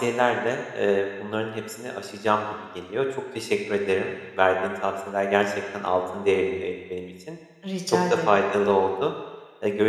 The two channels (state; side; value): identical; both; correlation 1.00